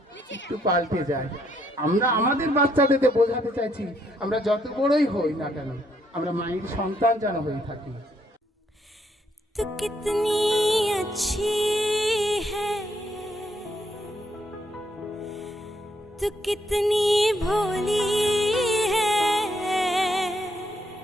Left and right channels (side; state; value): both; normal; correlation 0.73